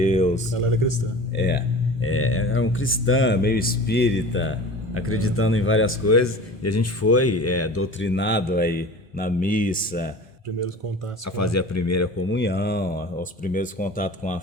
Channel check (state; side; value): normal; both; correlation 0.38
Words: Ela era cristã. Era um cristã, meio espírita, acreditando em várias coisas, e a gente foi doutrinado aí na missa, primeiros contatos a fazer a primeira comunhão, os primeiros contatos com a